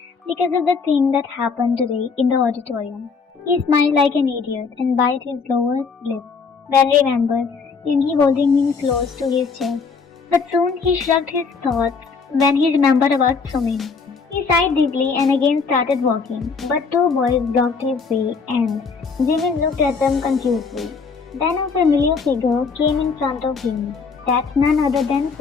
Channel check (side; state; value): right; quieter; 5.1 dB